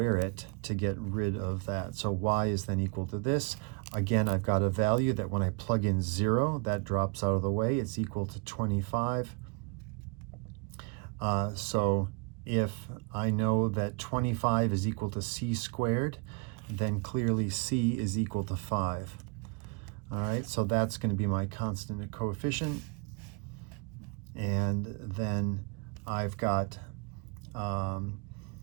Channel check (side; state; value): left; quieter; 31.7 dB